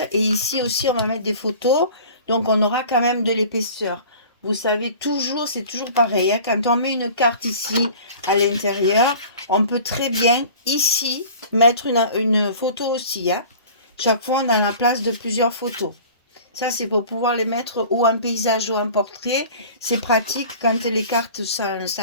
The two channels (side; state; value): both; inverted; correlation -0.43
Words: Et ici aussi, on va mettre des photos. Donc, on aura quand même de l'épaisseur. Vous savez, toujours, c'est toujours pareil. Hein, quand on met une carte ici à l'intérieur, on peut très bien ici mettre une photo aussi. Hein. Chaque fois, on a la place de plusieurs photos. Ça, c'est pour pouvoir les mettre ou en paysage ou en portrait. C'est pratique quand les cartes